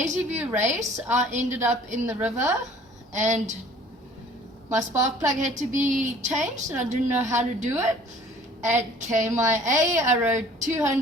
View race, I ended up in the river and my spark plug had to be changed and I didn't know how to do it. At KMIA I rode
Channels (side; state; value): both; normal; correlation 0.52